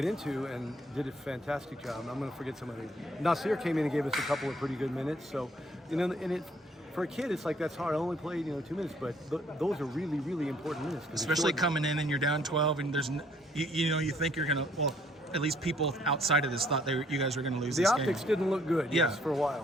into, and did a fantastic job. I'm going to forget somebody. Nasir came in and gave us a couple of pretty good minutes. So, and for a kid, it's like that's hard. I only played 2 minutes, but those are really, really important minutes. Especially coming in and you're down 12, and there's you think you're going to, well, at least people outside of this thought you guys were going to lose this game. The optics didn't look good, yes, for a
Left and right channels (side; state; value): both; normal; correlation 0.63